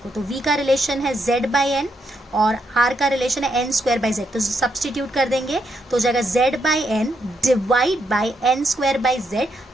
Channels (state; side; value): normal; both; correlation 0.79